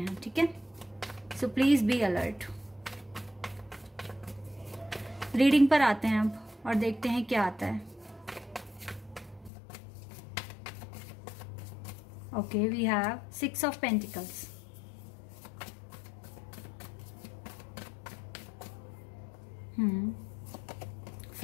ठीक है, so please be alert. Reading पर आते हैं अब और देखते हैं क्या आता है। Okay, we have 6 of Pentacles.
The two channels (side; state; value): right; drops out; at 9.5 s